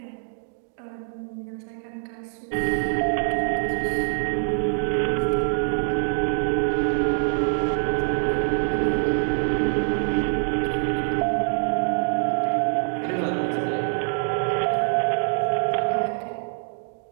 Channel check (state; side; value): silent; left; 55 dB below the other